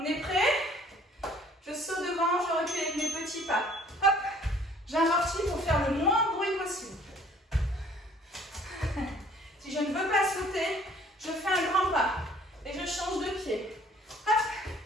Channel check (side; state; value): both; normal; correlation 0.56